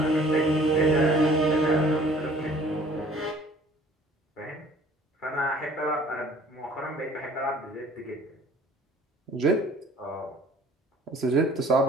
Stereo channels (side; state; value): both; normal; correlation 0.53